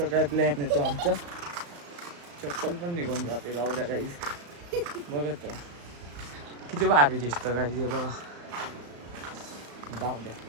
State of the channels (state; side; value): late; left; 35 ms